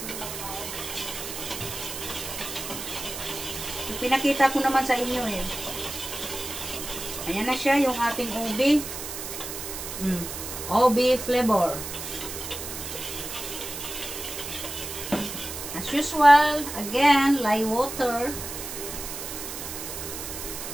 Pinakita ko naman sa inyo eh. Ayan na siya yung ating ubi. Ubi flavor. As usual, again, lye water.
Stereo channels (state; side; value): noise; right; hiss, 7 dB below the sound